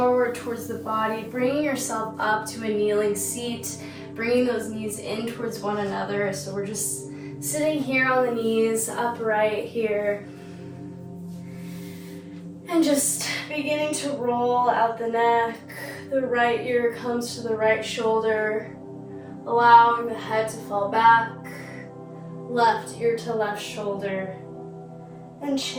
towards the body, bringing yourself up to a kneeling seat, bringing those knees in towards one another. So we're just sitting here on the knees, upright here. And just beginning to roll out the neck. The right ear comes to the right shoulder, allowing the head to fall back. Left ear to left shoulder, and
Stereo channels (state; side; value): identical; both; correlation 1.00